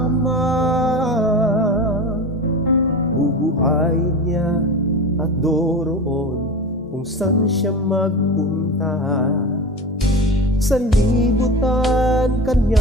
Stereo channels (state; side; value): normal; both; correlation 0.29